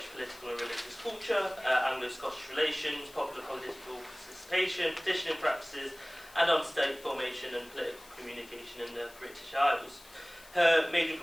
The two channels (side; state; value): left; noise; hiss, 22 dB below the sound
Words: political and religious culture, Anglo-Scottish relations, popular political participation, petitioning practices, and on state formation and political communication in the British Isles. Her major